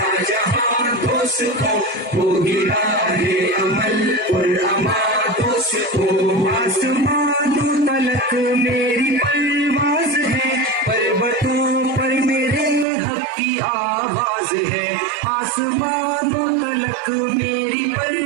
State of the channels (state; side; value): drops out; left; at 12.9 s